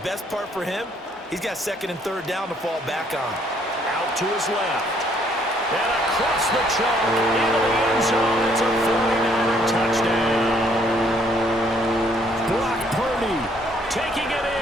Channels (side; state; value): both; normal; correlation 0.65